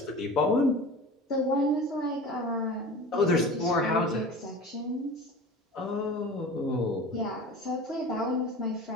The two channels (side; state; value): both; normal; correlation 0.36